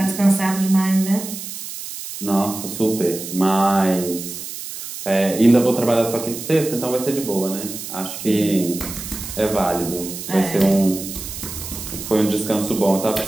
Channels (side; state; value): right; noise; hiss, 9 dB below the sound